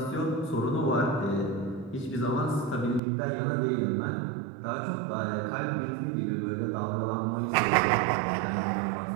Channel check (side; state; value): left; drops out; at 3.0 s